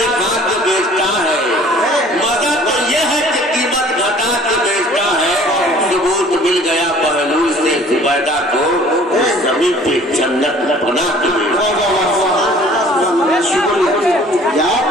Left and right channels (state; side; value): normal; both; correlation 0.51